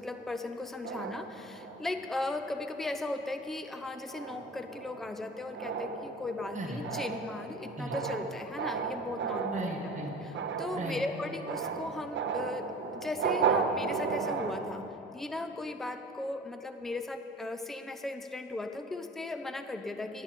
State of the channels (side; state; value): both; normal; correlation 0.42